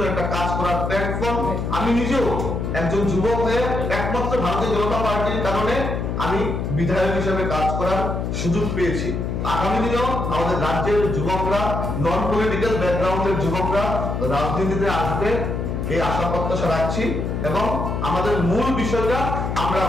একটা কাজ করার প্ল্যাটফর্ম। আমি নিজেও একজন যুবক হয়ে একমাত্র ভারতীয় জনতা পার্টির কারণে আমি বিধায়ক হিসেবে কাজ করার সুযোগ পেয়েছি। আগামী দিনেও আমাদের রাজ্যের যুবকরা, নন পলিটিক্যাল ব্যাকগ্রাউন্ডের যুবকরা রাজনীতিতে আসবে এই আশা প্রত্যাশা রাখছি এবং আমাদের মূল বিষয়টা আমরা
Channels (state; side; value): noise; left; hum, 2 dB below the sound